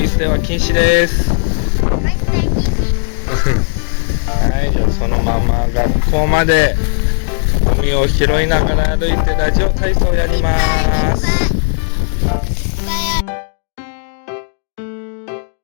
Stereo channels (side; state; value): right; silent; digital silence